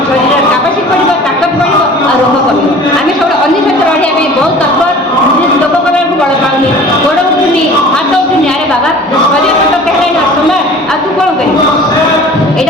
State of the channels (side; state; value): both; normal; correlation 0.44